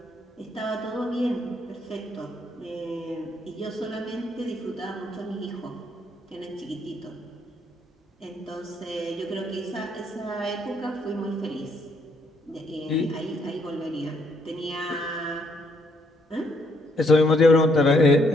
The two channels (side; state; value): both; normal; correlation 0.71